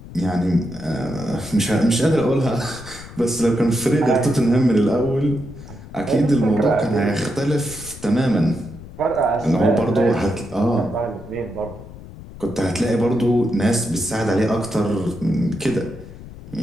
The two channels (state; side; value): noise; left; rumble, 16 dB below the sound